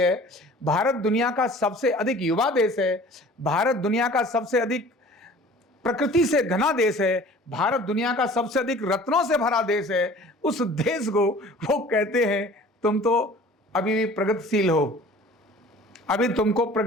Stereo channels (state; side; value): normal; both; correlation 0.46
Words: भारत दुनिया का सबसे अधिक युवा देश है, भारत दुनिया का सबसे अधिक प्रकृति से घना देश है, भारत दुनिया का सबसे अधिक रत्नों से भरा देश है। उस देश को वो कहते हैं तुम तो अभी भी प्रगतिशील हो, अभी तुमको